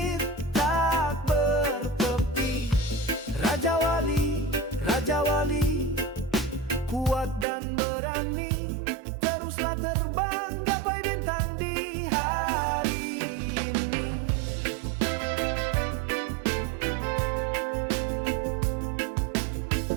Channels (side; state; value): left; drops out; at 7.5 s